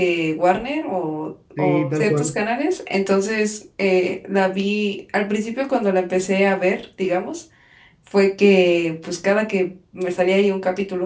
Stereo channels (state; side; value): identical; both; correlation 1.00